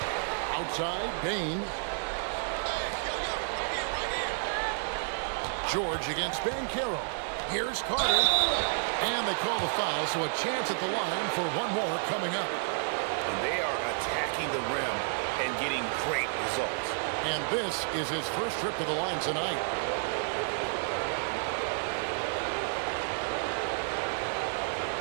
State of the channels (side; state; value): left; silent; 57 dB below the other